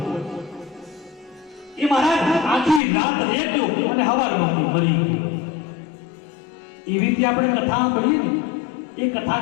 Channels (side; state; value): right; drops out; at 2.8 s